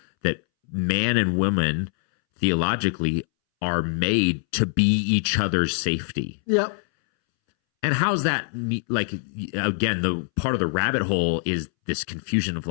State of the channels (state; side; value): silent; right; 63 dB below the other